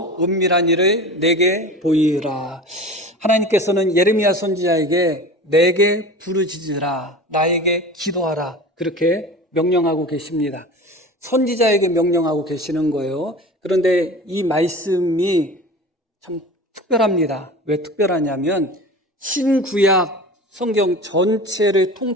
은밀한 일을 내게 보이라. 하나님께서는 예레미야 선지자에게 내게 부르짖으라, 나에게 기도하라 그렇게 명령하고 계십니다. 선지자에게 명령하고 계시는 거예요. 그런데 이 말씀이 참 특별합니다. 왜 특별하냐면 신구약 성경 전체를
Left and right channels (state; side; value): normal; both; correlation 0.35